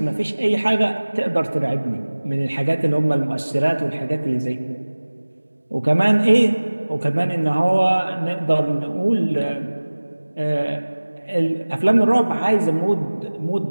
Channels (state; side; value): inverted; both; correlation -1.00